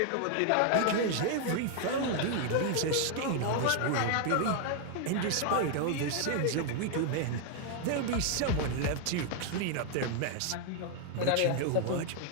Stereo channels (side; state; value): both; different; correlation 0.00